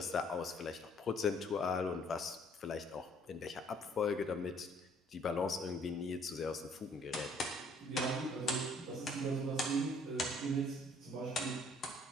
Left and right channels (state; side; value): normal; both; correlation 0.61